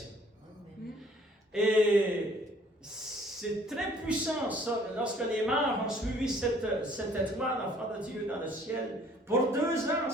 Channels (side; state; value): both; normal; correlation 0.57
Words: Et c'est très puissant, ça, lorsque les morts ont suivi cette étoile, enfant de Dieu, dans le ciel. Pour 2 ans,